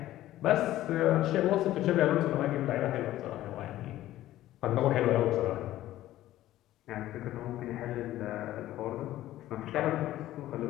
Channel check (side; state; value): right; quieter; 14.4 dB